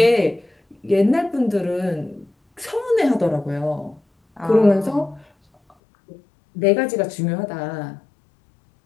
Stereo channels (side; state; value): right; drops out; at 5.8 s